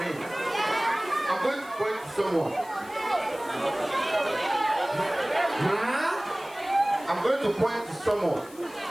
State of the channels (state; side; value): noise; left; hiss, 22 dB below the sound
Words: him, I'm going to point to someone. I'm going to point to someone.